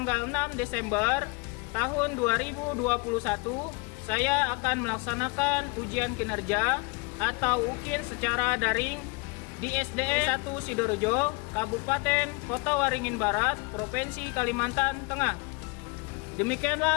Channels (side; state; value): right; quieter; 29.4 dB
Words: 6 Desember tahun 2021, saya akan melaksanakan ujian kinerja atau UKIN secara daring di SDN 1 Sidoarjo, Kabupaten Kota Waringin Barat, Provinsi Kalimantan Tengah.